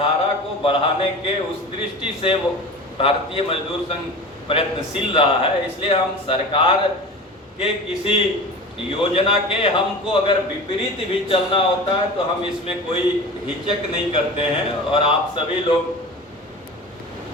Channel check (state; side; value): normal; both; correlation 0.34